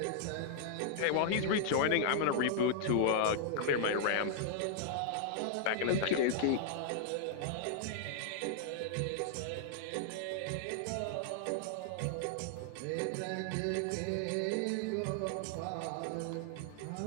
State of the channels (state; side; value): different; both; correlation -0.01